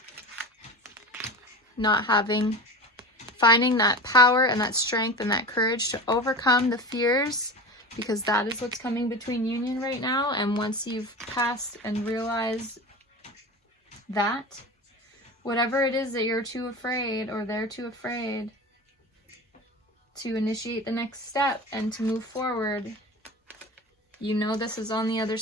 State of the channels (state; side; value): normal; both; correlation 0.30